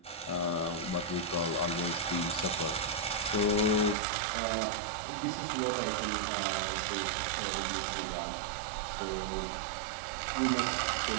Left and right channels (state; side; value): drops out; left; at 4.0 s